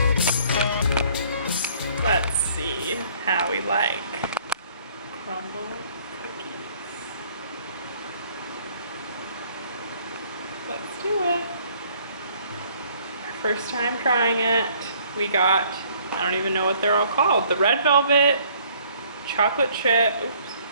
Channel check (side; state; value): both; inverted; correlation -0.59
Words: Let's see how we like Crumbl cookies. Let's do it. Our first time trying it. We got, I don't even know what they're all called. The red velvet, chocolate chip,